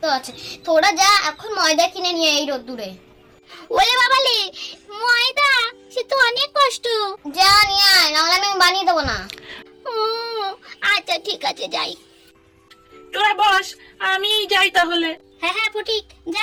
আছে। তোরা যা এখন ময়দা কিনে নিয়ে এই রোদ্দুরে। ওলে বাবালে, ময়দা সে তো অনেক কষ্ট। যা নিয়ে আয়, নাহলে আমি বানিয়ে দেবো না। ও আচ্ছা ঠিক আছে, যাই। তোরা বস, আমি যাই তাহলে। হ্যাঁ হ্যাঁ ফটিক, যা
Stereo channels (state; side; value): identical; both; correlation 1.00